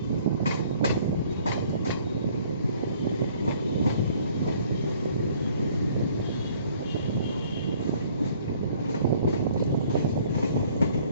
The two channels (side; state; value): both; inverted; correlation -0.58